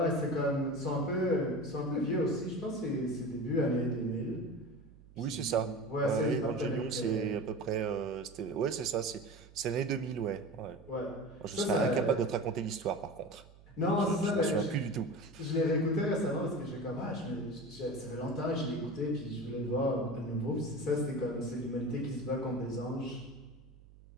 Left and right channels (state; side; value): noise; right; hum, 22 dB below the sound